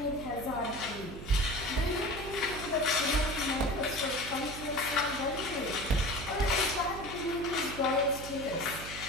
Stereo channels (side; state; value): right; noise; hum, 11 dB below the sound